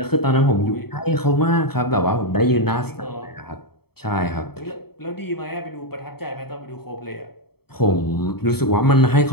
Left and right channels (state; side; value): late; right; 0.96 ms